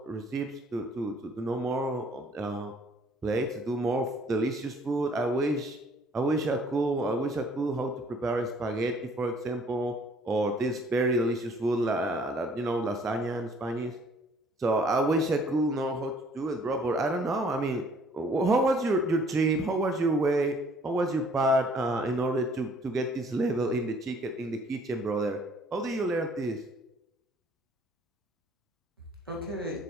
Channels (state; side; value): normal; both; correlation 0.59